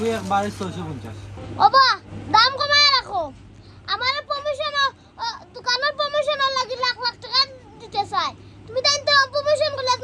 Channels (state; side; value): identical; both; correlation 1.00